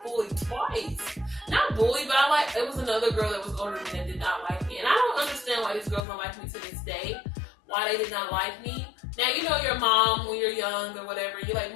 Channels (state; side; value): drops out; right; at 6.1 s